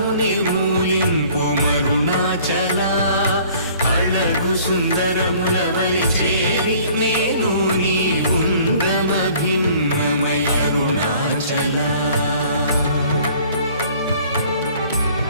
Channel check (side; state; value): both; inverted; correlation -0.54